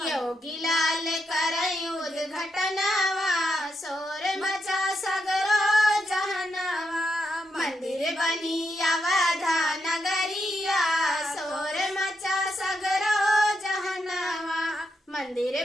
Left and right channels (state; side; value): normal; both; correlation 0.83